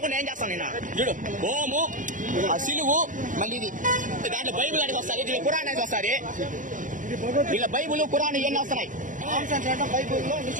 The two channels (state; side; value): late; left; 0.38 ms